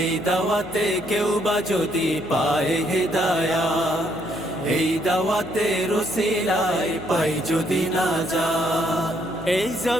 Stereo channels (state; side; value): noise; left; hum, 18 dB below the sound